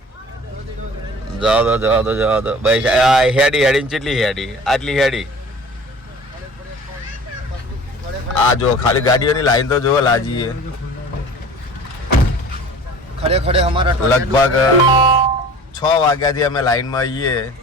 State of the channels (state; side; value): normal; both; correlation 0.43